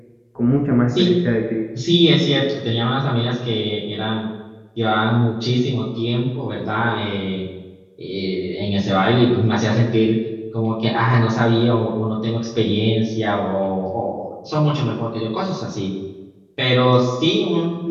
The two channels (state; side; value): identical; both; correlation 1.00